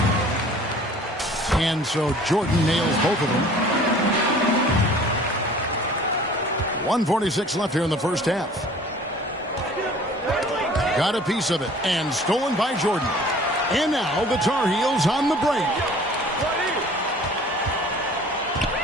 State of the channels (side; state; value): both; normal; correlation 0.49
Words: And so Jordan nails both of them. 1:46 left here in the first half. Got a piece of it and stolen by Jordan. And now the Tar Heels on the break.